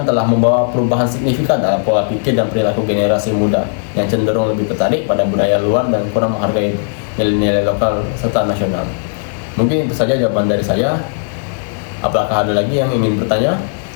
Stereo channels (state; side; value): silent; right; 66 dB below the other